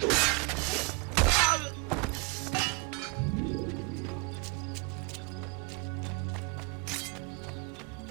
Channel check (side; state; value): left; quieter; 32.9 dB